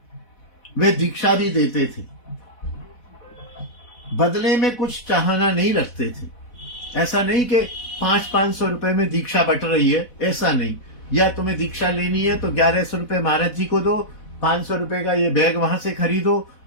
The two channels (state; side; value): late; right; 4.1 ms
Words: वे दीक्षा भी देते थे, बदले में कुछ चाहना नहीं रखते थे। ऐसा नहीं कि 500-500 रुपए में दीक्षा बट रही है, ऐसा नहीं। या तुम्हें दीक्षा लेनी है तो 1100 रुपए महाराज जी को दो, 500 रुपए का ये बैग वहां से खरीदो,